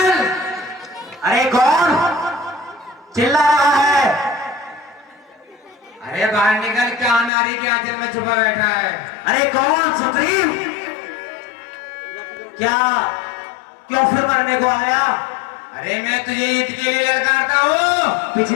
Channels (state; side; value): drops out; right; at 7.3 s